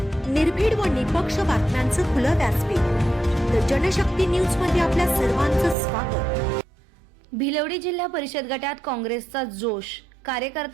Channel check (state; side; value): drops out; left; at 5.8 s